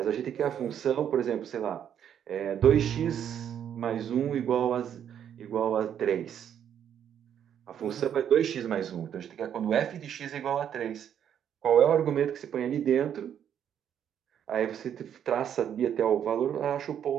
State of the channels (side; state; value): left; quieter; 9.2 dB